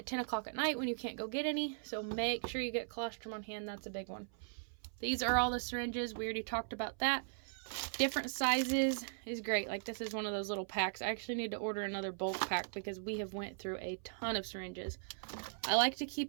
10 o'clock at night when you can't go get any. So make sure you get colostrum on hand. That's a big one. These are all the syringes. We already talked about that. Different sizes is great. Like this is one of those little packs. I actually need to order another bulk pack because we have went through a ton of syringes. I like to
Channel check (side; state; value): left; silent; 52 dB below the other